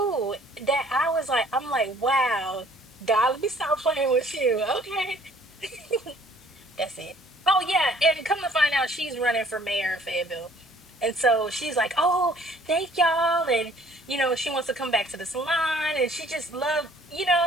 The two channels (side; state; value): both; normal; correlation 0.57